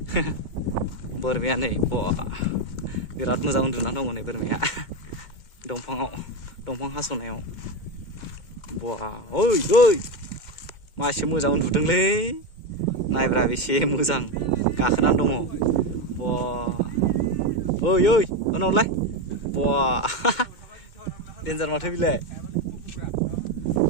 बोरमाया नै बिराद मोजां उन्दुनानै दङ नै बोरमाया दंफां हास'नायाव ओइ ओइ मासे मोजां उन्दुदोंलै नायब्रा बेसे मोजां गाखोनानै दङ ओइ ओइ उनावलाय देन्जार माथो बिलाय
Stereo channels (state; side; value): late; right; 2.1 ms